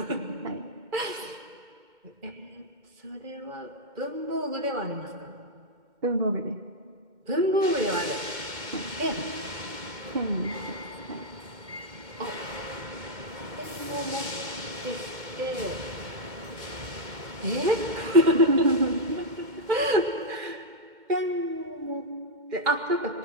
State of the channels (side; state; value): left; late; 2.1 ms